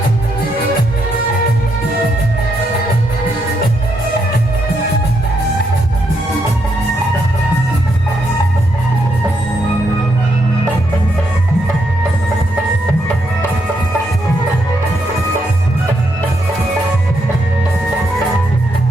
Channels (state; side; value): noise; left; rumble, 21 dB below the sound